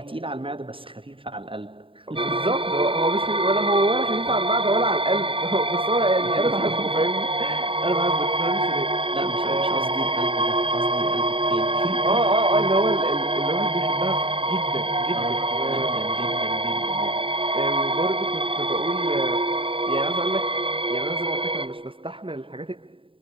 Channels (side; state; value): left; late; 0.25 ms